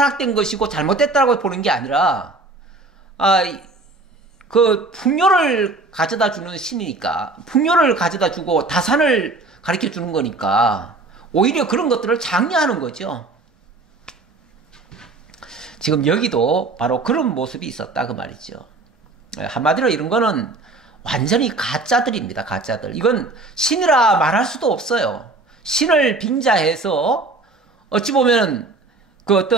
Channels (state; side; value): quieter; left; 3.4 dB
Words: 것이고 잘못됐다고 보는 게 아니라 그 풍요를 가져다 주는 신이니까 풍요를 가져다 주고 다산을 가르쳐 주는 거니까 오히려 그런 것들을 장려하는 거죠. 지금 여기도 바로 그런 모습이 있었다 그 말이죠. 한마디로 이런 거는 완전히 가짜들입니다. 가짜들. 이건 신이라 말할 수도 없어요. 신을 빙자해서 어찌 보면 그